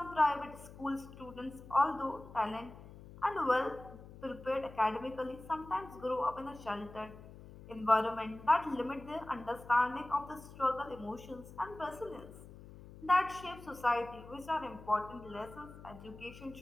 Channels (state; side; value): noise; left; hum, 17 dB below the sound